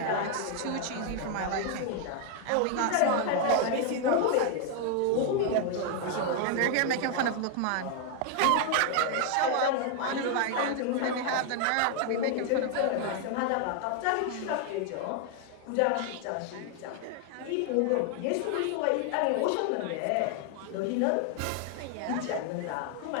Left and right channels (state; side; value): different; both; correlation 0.00